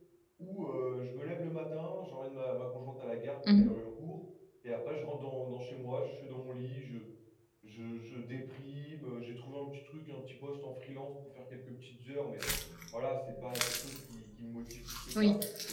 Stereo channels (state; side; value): identical; both; correlation 1.00